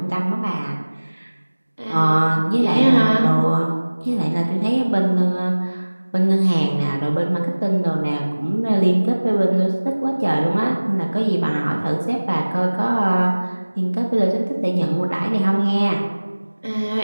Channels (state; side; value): inverted; both; correlation -1.00